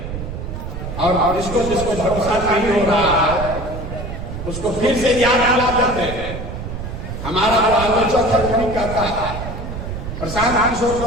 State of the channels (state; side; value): noise; right; rumble, 7 dB below the sound